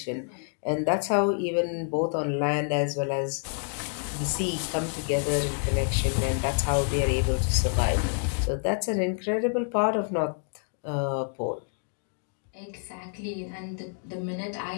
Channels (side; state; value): right; silent; 58 dB below the other